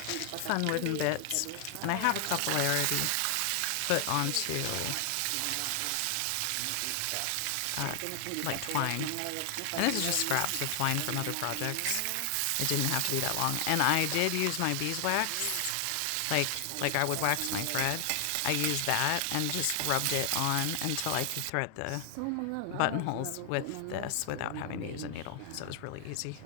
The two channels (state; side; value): different; both; correlation 0.00